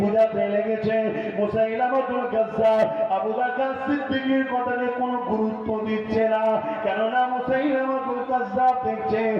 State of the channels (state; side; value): identical; both; correlation 1.00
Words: বুঝাতে লেগেছে, মুসাইলামাতুল কাজ্জাব আবু বকর সিদ্দিকের কথাকে কোনো গুরুত্ব দিচ্ছে না। কেননা মুসাইলামাতুল কাজ্জাব দেখছে